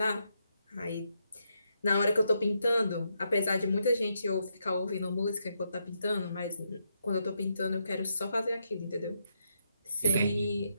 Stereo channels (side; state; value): both; inverted; correlation -0.80